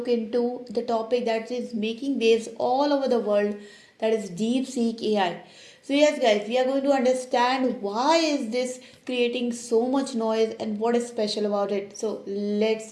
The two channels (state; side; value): identical; both; correlation 1.00